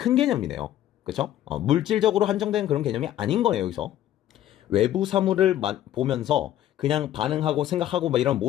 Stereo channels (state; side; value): quieter; right; 12.4 dB